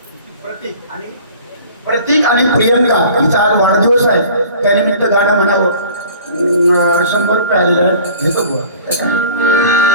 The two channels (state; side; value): inverted; both; correlation -0.46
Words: प्रतीक आणि प्रियंका हिचा आज वाढदिवस आहे. त्यानिमित्त गाणं म्हणावं. 100 रुपये आलेलं आहे. घेतो बुवा.